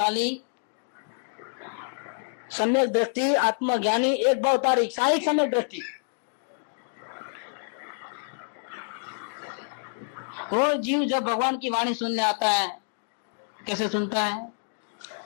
सम्यक दृष्टि, आत्मज्ञानी, एक भवतारी, साहिक सम्यक दृष्टि। वो जीव जब भगवान की वाणी सुनने आता है, कैसे सुनता है?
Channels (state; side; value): silent; right; digital silence